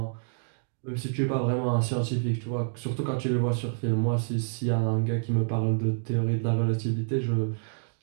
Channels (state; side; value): silent; left; digital silence